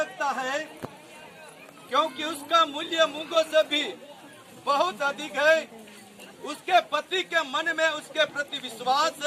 है, क्योंकि उसका मूल्य मूंगों से भी बहुत अधिक है। उसके पति के मन में उसके प्रति विश्वास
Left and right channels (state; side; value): identical; both; correlation 1.00